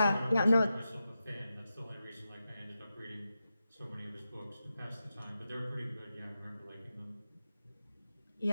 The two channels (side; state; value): both; inverted; correlation -0.91